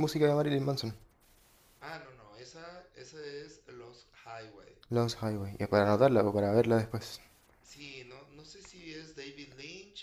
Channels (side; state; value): both; identical; correlation 1.00